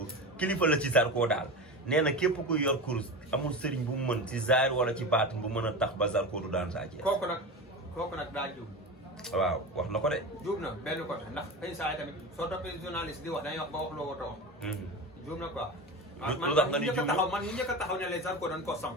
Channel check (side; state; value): both; normal; correlation 0.26